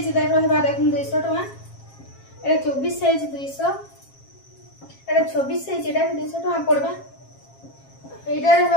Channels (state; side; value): late; right; 7.4 ms